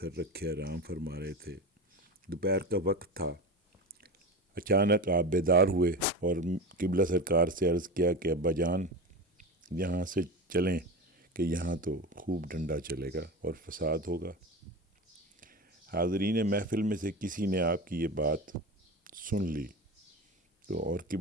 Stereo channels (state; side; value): normal; both; correlation 0.26